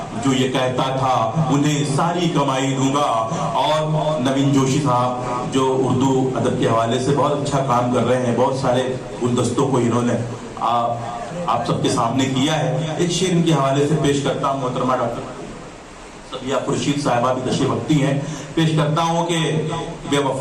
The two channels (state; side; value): identical; both; correlation 1.00